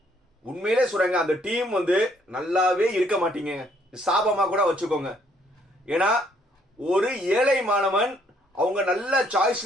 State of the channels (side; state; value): both; normal; correlation 0.67